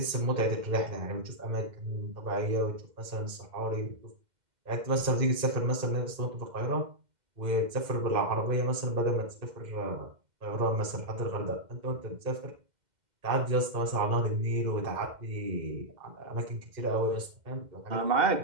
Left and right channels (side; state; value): left; late; 2.1 ms